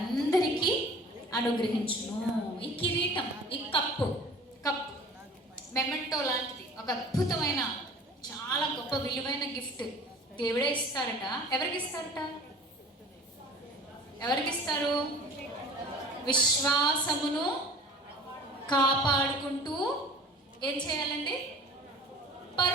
అనుగ్రహించును. ఈ కిరీటం, ఈ కప్పు మెమెంటో లాంటిది, ఒక అద్భుతమైన చాలా గొప్ప విలువైన గిఫ్ట్ దేవుడే ఇస్తారట. ఎవరికి ఇస్తారట? ఎవరికి ఇస్తారు? విశ్వాసమును కాపాడుకుంటూ ఏం చేయాలండి?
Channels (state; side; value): normal; both; correlation 0.44